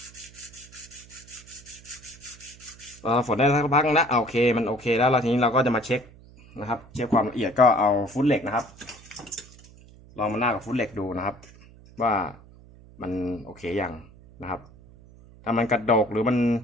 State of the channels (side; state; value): right; noise; hum, 23 dB below the sound